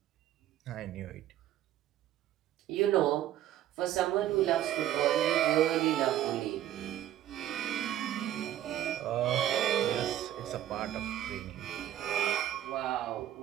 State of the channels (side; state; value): left; quieter; 12.2 dB